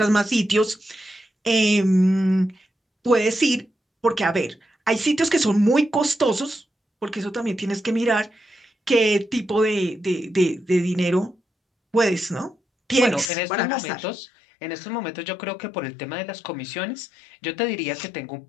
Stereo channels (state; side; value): drops out; right; at 13.2 s